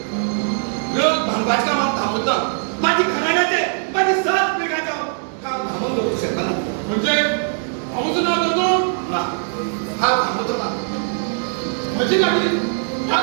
लोक भांगवाच का मग थांबत ना माझी घराण्याचे माझी सात पिढ्याचं काम थांबून होऊ शकता ना म्हणजे भाऊचं नाव करतो ना हा थांबतो ना म्हणजे गाडी या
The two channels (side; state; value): left; silent; 65 dB below the other